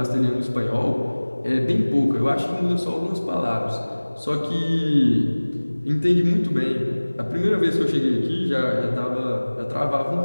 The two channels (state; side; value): inverted; both; correlation -1.00